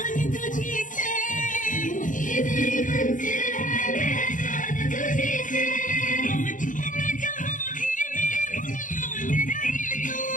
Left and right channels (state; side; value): late; right; 0.38 ms